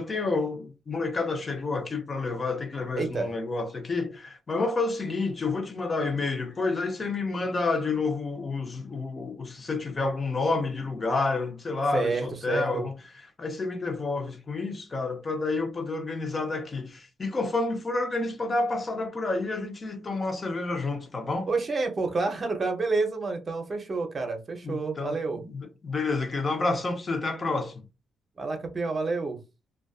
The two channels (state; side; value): normal; both; correlation 0.80